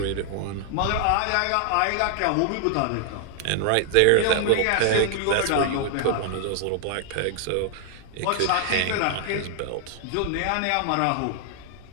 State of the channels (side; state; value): both; different; correlation 0.00